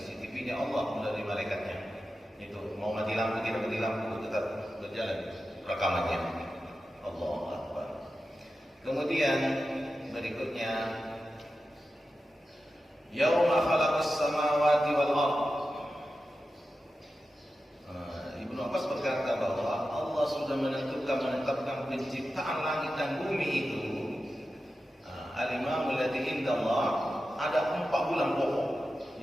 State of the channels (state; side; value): normal; both; correlation 0.92